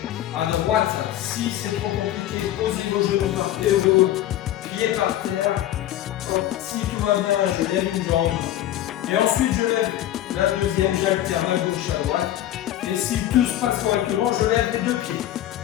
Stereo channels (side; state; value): right; quieter; 13.0 dB